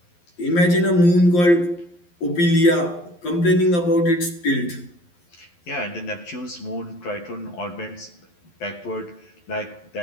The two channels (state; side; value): late; right; 11 ms